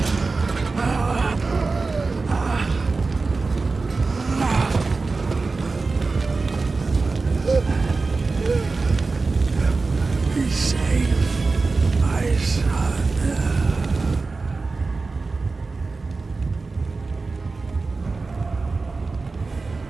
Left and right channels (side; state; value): left; quieter; 3.9 dB